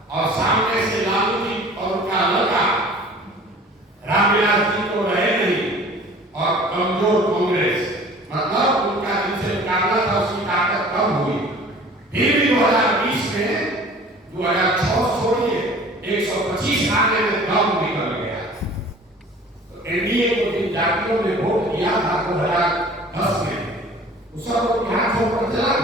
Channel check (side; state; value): both; normal; correlation 0.46